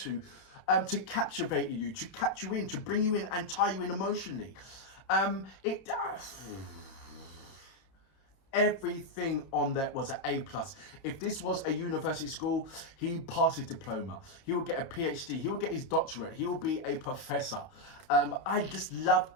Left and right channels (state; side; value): late; right; 30 ms